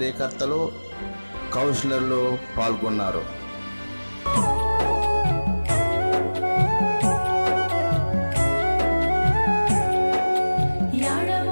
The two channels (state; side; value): inverted; both; correlation -1.00